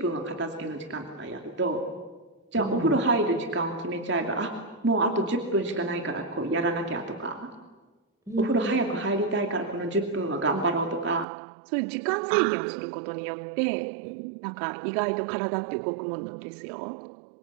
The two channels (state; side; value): drops out; left; at 11.2 s